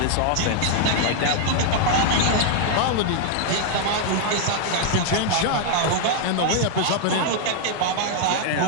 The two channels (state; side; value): different; both; correlation 0.00